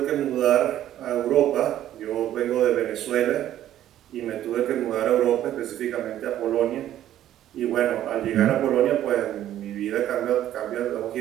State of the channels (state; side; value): quieter; left; 12.2 dB